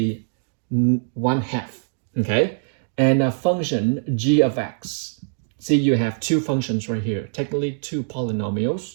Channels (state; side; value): silent; left; digital silence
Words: 1/2, okay? And a function g of x. See, you have two functions right here, technically two